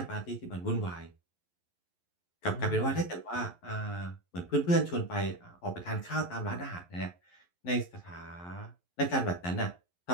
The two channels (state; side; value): late; right; 11 ms